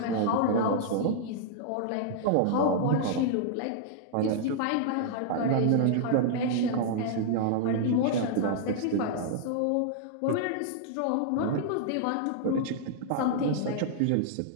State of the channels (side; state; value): both; different; correlation -0.01